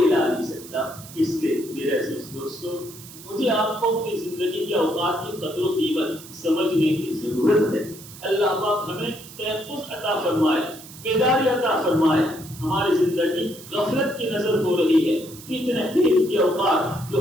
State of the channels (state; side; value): noise; right; hiss, 17 dB below the sound